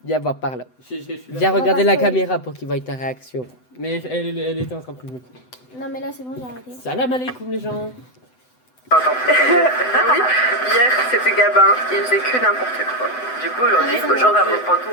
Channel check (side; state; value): right; late; 7.9 ms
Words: Viens voir par là. Je suis là. Viens regarder la caméra pour qu'il voie ta réaction. Mais elle était en train de me... non, mais là, c'est bon, j'ai arrêté. Salam alaikum les gens. Oui, hier c'était Gabin, il faisait que n'importe quoi. Du coup, aujourd'hui, Ah, mais genre, elle reprend tout